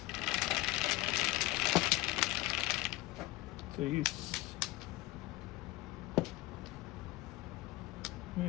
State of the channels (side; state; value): right; quieter; 19.1 dB